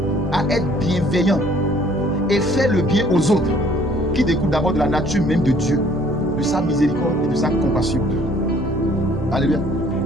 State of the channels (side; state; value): left; noise; hum, 11 dB below the sound